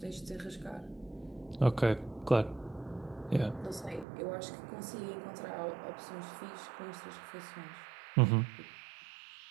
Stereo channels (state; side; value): drops out; left; at 4.0 s